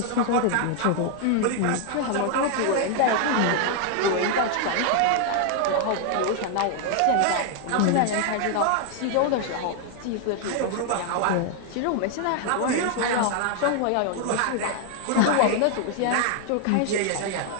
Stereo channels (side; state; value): both; different; correlation 0.00